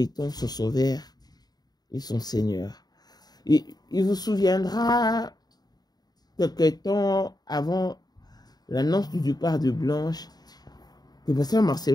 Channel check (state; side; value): late; right; 0.19 ms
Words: son sauveur et son Seigneur. Et il vous souviendra quelque temps avant l'annonce du départ de Blanche que Pasteur